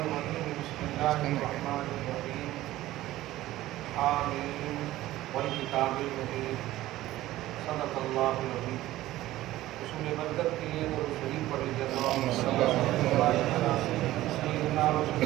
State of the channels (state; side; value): quieter; left; 15.7 dB